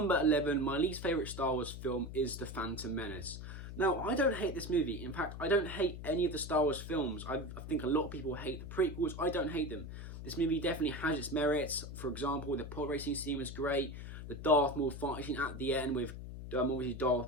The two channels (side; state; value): left; noise; hum, 9 dB below the sound